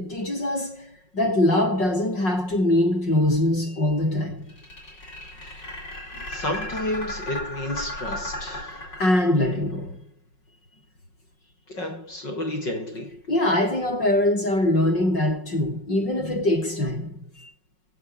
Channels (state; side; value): late; right; 5.5 ms